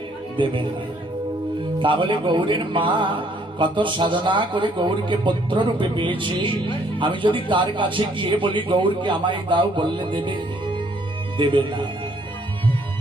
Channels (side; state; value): both; normal; correlation 0.65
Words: দেবে না। তাহলে গৌরের মা কত সাধনা করে গৌরকে পুত্র রূপে পেয়েছি, আমি যদি তার কাছে গিয়ে বলি গৌরকে আমায় দাও, বললে দেবে? দেবে না।